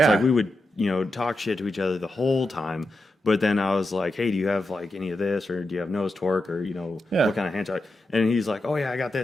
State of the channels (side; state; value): both; normal; correlation 0.88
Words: like we would talk shit to each other the whole time. But then I was like, hey, do you have like any of this, or do you have nose torque, or what kind of hand torque? And he's like, oh yeah, I got